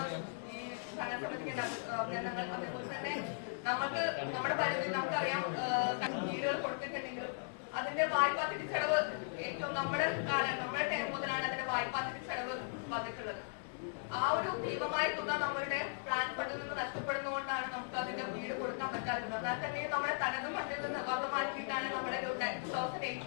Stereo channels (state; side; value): silent; right; 53 dB below the other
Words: ഈ ഭരണസമിതിക്ക് അഭിനന്ദനങ്ങൾ. അതേപോലെ തന്നെ നമുക്ക് നമ്മുടെ പരിധി നമുക്കറിയാം, വീടുകൾ കൊടുത്തിട്ടുണ്ടെങ്കിലും അതിന്റെ വായ്പാ തിരിച്ചടവ് ഏറ്റവും നമ്മുടെ ടൈം മുതലാണ് അതിന്റെ വായ്പാ തിരിച്ചടവ് വന്നിട്ടുള്ളത്. ആ ഒരു ഭീമമായ തുക നമ്മളുടെ പ്ലാൻ ഫണ്ടിൽ നിന്ന് നഷ്ടപ്പെടുന്നതുകൊണ്ടാണ് നമുക്ക് അതിന്റെ വീട് കൊടുക്കാൻ പറ്റാത്തത്. എന്നാൽ തന്നെ നമ്മുടെ തനത് ഫണ്ടിൽ നിന്ന് വക മാറ്റിയിട്ടാണ് നമ്മുടെ